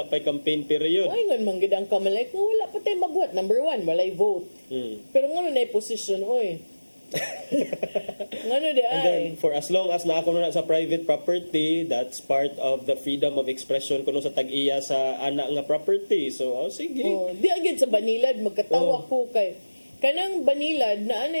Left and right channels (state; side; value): inverted; both; correlation -1.00